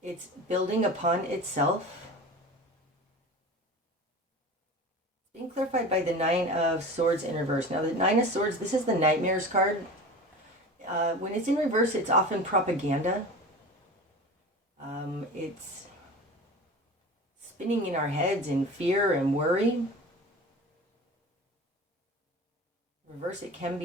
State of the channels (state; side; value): normal; both; correlation 0.33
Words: It's building upon itself. Being clarified by the Nine of Swords in reverse. Now the Nine of Swords, this is the Nightmares card. When it's in reverse, it's often propaganda. It's spinning in our heads in fear and worry. Reverse, it can